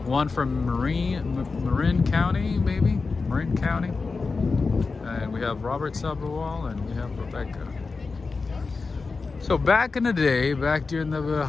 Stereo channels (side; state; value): right; quieter; 4.3 dB